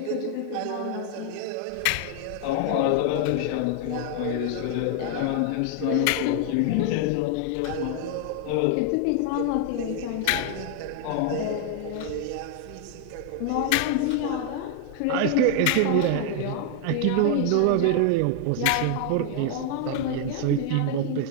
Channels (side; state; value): both; different; correlation 0.00